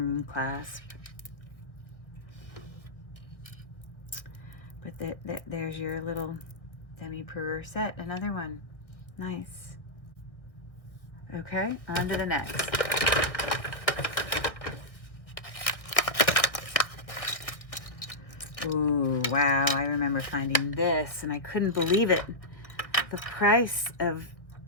clasp. But there's your little Demi-Parure set, another one. Nice. Okay, on to the next. Ooh, wow, I remember finding this and I couldn't believe it. The price of,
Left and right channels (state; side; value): late; right; 1.5 ms